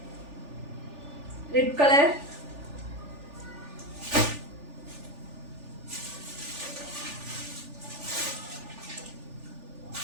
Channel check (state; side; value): late; left; 3.4 ms